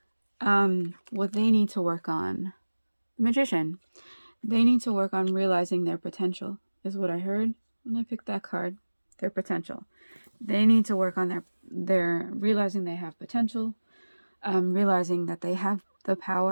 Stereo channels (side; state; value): both; inverted; correlation -1.00